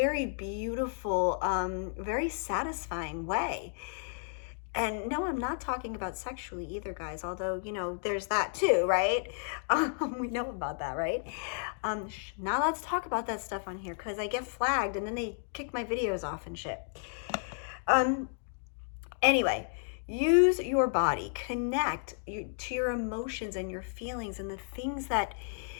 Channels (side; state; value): right; silent; digital silence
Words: beautiful, very satisfying way. And no, I'm not talking about sexually either, guys, although, there's that too, right? We know about that, right? Not allowed to talk about that stuff on here because I get flagged and then they kick my videos off and shit. Anyway, use your body, connect to your emotions and your feelings and the things that